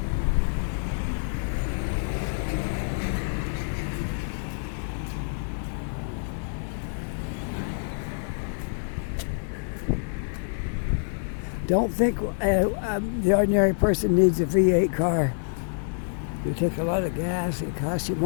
Don't think the ordinary person needs a V8 car. You take a lot of gas, it costs you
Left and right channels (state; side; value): silent; right; 58 dB below the other